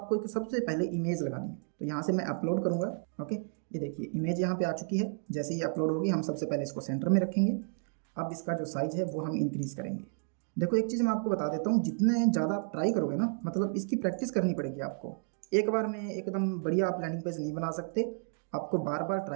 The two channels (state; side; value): silent; left; 57 dB below the other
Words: एक सबसे पहले इमेज लगानी है। तो यहाँ से मैं अपलोड करूँगा। ओके, ये देखिए इमेज यहाँ पे आ चुकी है। जैसे ही अपलोड होगी हम सबसे पहले इसको सेंटर में रखेंगे। अब इसका जो साइज़ है वो हम इंक्रीज़ करेंगे। देखो, एक चीज़ मैं आपको बता देता हूँ, जितने ज़्यादा आप ट्राई करोगे ना, मतलब इसकी प्रैक्टिस करनी पड़ेगी आपको। एक बार में एकदम बढ़िया आप लैंडिंग पेज नहीं बना सकते, आपको बार बार